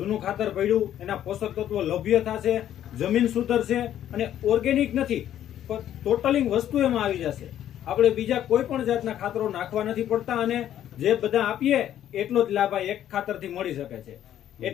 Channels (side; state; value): right; quieter; 11.3 dB